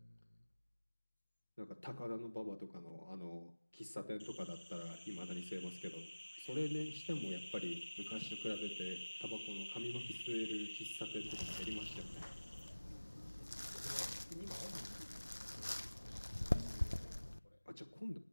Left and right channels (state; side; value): inverted; both; correlation -1.00